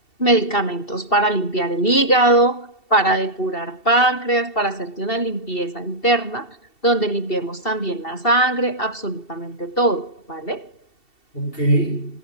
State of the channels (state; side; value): late; right; 2.7 ms